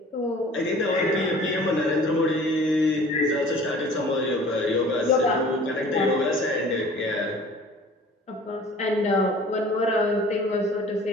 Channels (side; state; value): both; normal; correlation 0.47